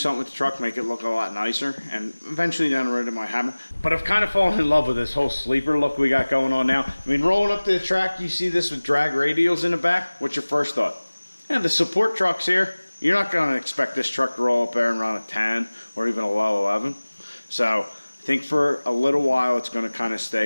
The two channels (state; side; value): inverted; both; correlation -1.00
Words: with the truck, make it look a lot nicer, and eventually down the road it might happen. But I've kind of fallen in love with this whole sleeper look we got going on now. I mean, rolling up to the track, you see this with drag radials in the back. What's your first thought? Yeah, the support truck's here. You're not going to expect this truck to roll up there and run a 10 or even a low 11. So I think for a little while it's going to kind of